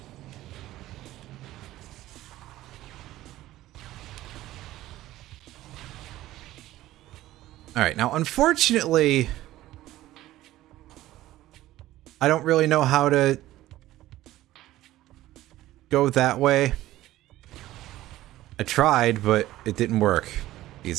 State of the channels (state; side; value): quieter; left; 15.4 dB